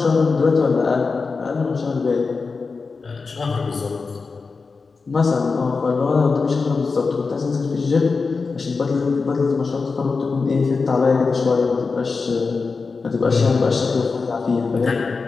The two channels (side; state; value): right; quieter; 4.5 dB